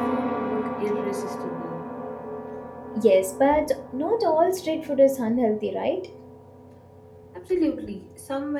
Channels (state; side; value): identical; both; correlation 1.00